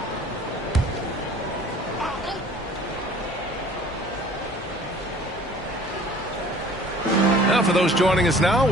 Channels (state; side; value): normal; both; correlation 0.50